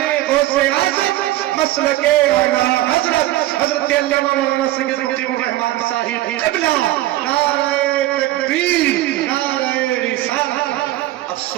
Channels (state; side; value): quieter; left; 15.7 dB